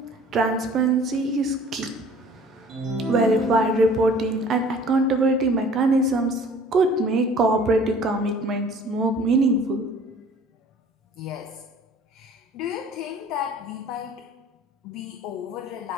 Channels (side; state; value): both; normal; correlation 0.50